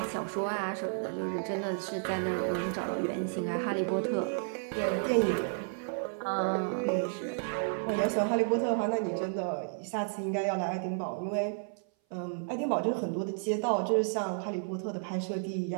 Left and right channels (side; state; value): left; silent; 56 dB below the other